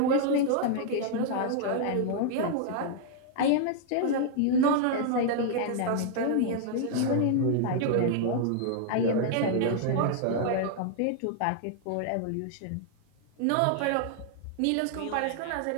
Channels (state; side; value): different; both; correlation 0.00